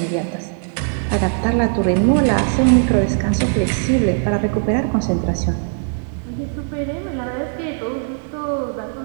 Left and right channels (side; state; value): left; silent; 66 dB below the other